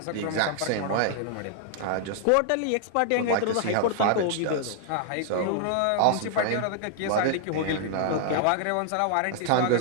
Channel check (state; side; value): different; both; correlation -0.01